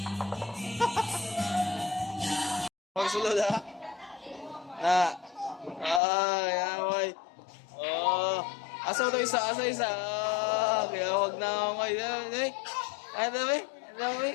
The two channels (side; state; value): right; drops out; at 6.0 s